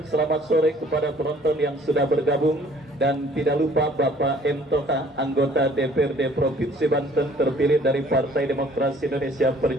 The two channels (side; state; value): both; normal; correlation 0.56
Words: selamat sore kepada penonton yang sudah bergabung, dan tidak lupa Bapak M. Toka, anggota DPRD Provinsi Banten terpilih dari Partai Demokrasi Indonesia